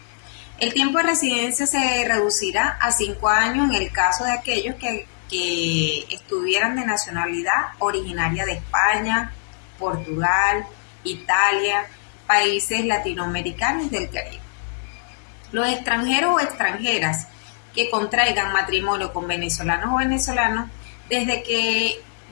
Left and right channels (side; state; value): right; silent; digital silence